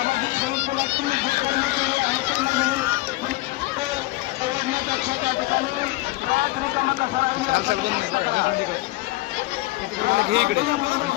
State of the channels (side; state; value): right; quieter; 19.5 dB